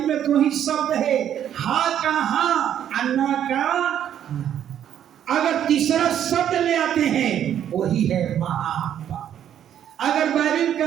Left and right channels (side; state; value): left; quieter; 10.0 dB